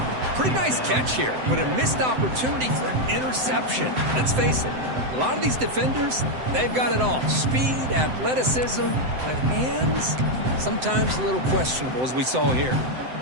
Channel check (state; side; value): late; left; 7.8 ms